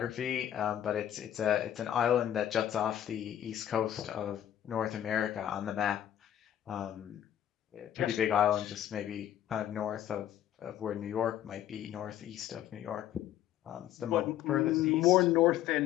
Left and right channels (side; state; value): right; quieter; 11.3 dB